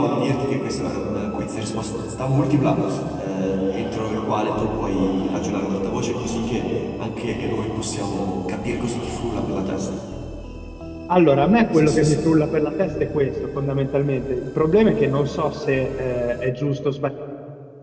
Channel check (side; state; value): both; identical; correlation 1.00